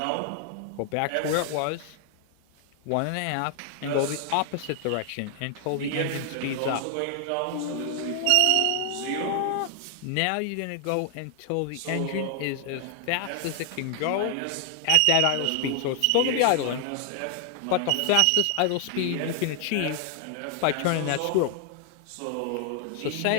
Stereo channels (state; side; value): different; both; correlation 0.00